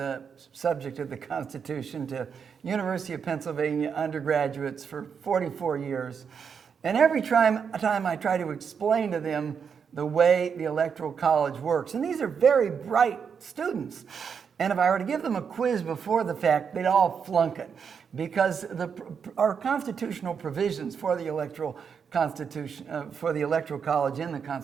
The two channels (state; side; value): quieter; left; 6.7 dB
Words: subject of the Constitution to University of Pennsylvania undergraduates for 44 years. And every time I try to explain to them the way the Electoral College works, and these are very bright students, and if I were to give them a quiz before the fact, they'd all flunk it, because our constitutional provisions for the Electoral College in the